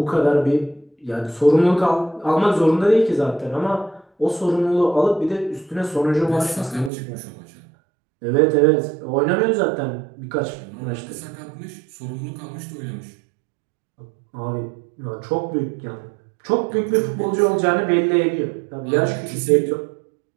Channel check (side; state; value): left; drops out; at 6.9 s